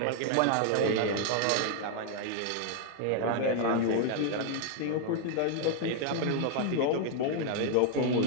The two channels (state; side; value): different; both; correlation 0.00